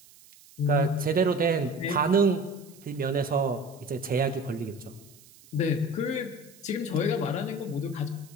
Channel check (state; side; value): noise; right; hiss, 24 dB below the sound